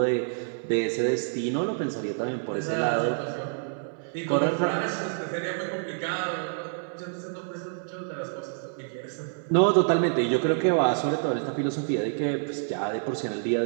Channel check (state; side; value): silent; left; 60 dB below the other